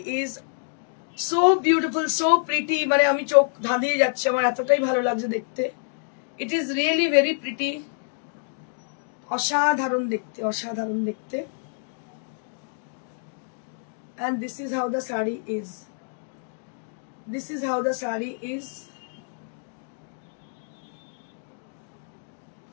is, so beautiful, so pretty, মানে আমি চোখ ধাঁধিয়ে যাচ্ছে, আমার এতটাই ভালো লাগছে দেখতে। It is really very pretty, অসাধারণ দেখতে, অসাধারণ দেখতে। And this is how the sari is. This is how the sari is.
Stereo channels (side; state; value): right; silent; digital silence